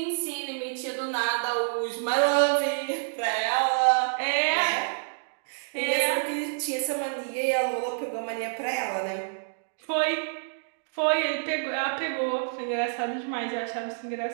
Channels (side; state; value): left; silent; digital silence